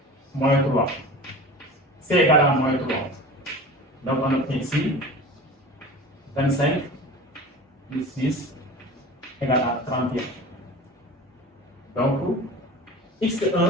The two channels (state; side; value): normal; both; correlation 0.36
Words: moins 3. C égale à moins 3. Donc, on obtient ici 25 plus 6 égale à 31. Donc,